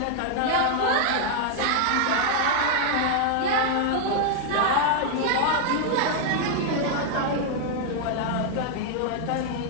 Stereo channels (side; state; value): both; different; correlation 0.00